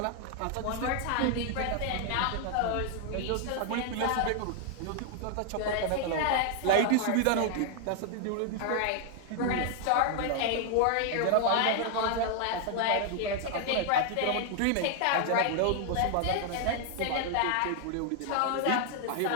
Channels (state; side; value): different; both; correlation 0.00